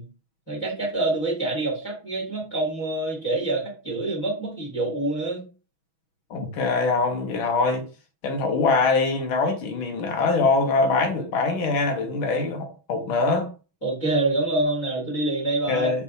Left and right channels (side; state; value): right; late; 6.2 ms